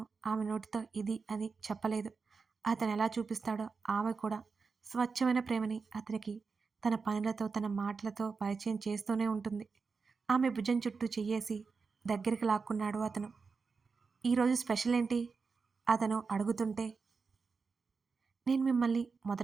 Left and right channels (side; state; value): left; quieter; 4.9 dB